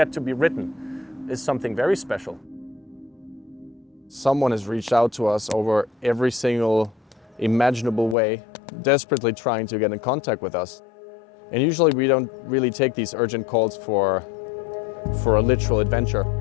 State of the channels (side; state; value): right; drops out; at 8.2 s